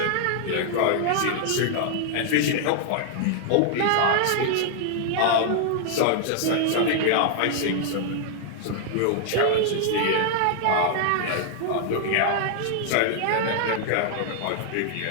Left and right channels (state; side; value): different; both; correlation 0.00